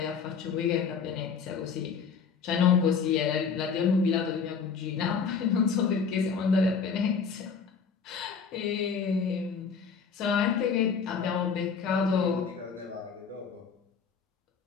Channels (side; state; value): right; quieter; 5.9 dB